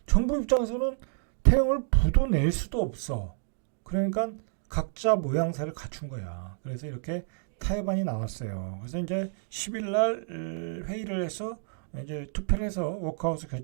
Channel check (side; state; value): left; silent; digital silence